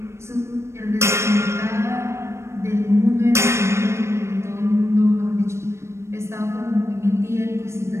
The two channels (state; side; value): late; left; 0.13 ms